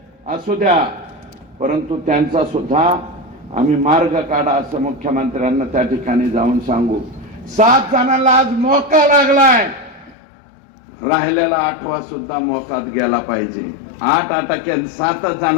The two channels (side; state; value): right; drops out; at 10.2 s